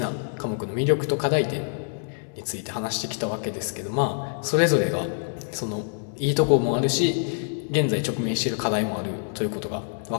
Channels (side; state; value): right; silent; digital silence